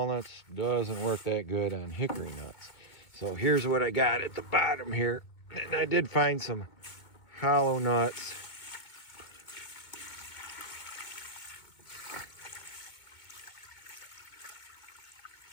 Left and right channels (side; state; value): right; late; 2.2 ms